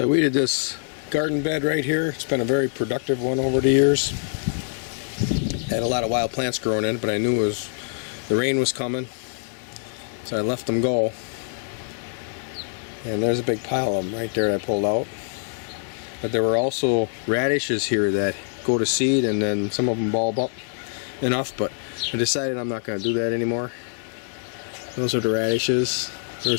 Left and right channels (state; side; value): silent; right; 59 dB below the other